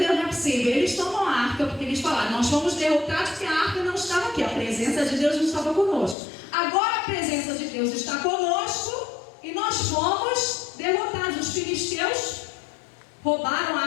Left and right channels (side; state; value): right; drops out; at 6.2 s